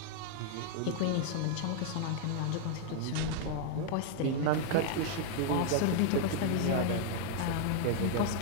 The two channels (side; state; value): both; different; correlation 0.00